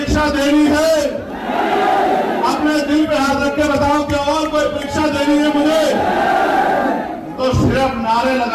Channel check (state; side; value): identical; both; correlation 1.00